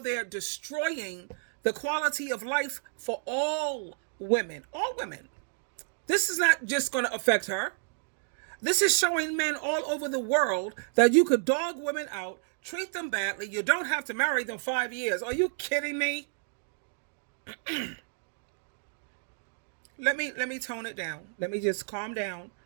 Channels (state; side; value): silent; left; digital silence